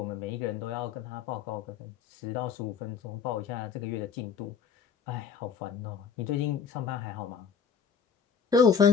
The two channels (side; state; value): right; quieter; 6.6 dB